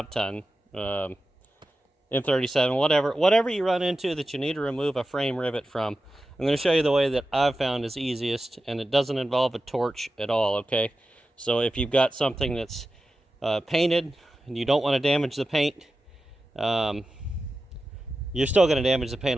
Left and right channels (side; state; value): both; normal; correlation 0.93